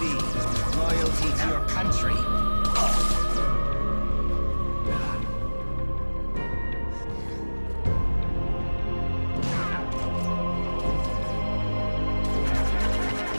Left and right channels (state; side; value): inverted; both; correlation -1.00